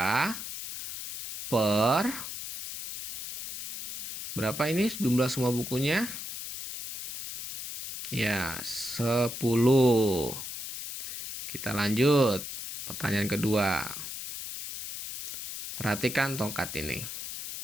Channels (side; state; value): left; noise; hiss, 8 dB below the sound